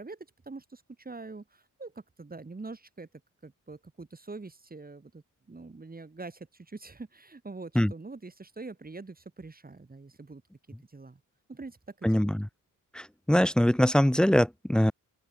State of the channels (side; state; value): both; normal; correlation 0.97